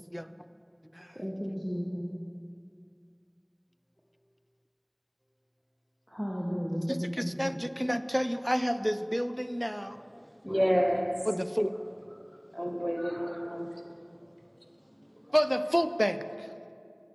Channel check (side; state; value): both; identical; correlation 1.00